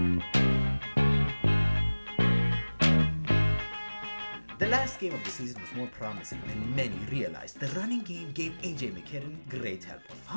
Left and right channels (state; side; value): inverted; both; correlation -1.00